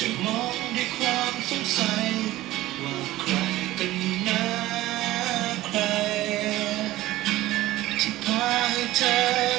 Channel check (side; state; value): left; quieter; 16.4 dB